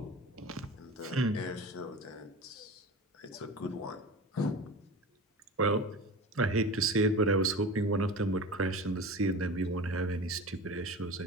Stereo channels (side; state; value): both; normal; correlation 0.33